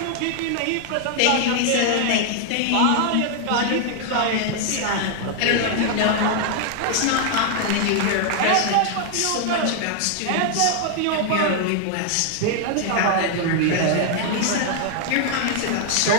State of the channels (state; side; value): different; both; correlation 0.00